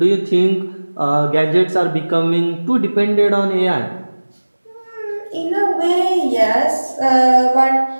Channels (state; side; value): inverted; both; correlation -1.00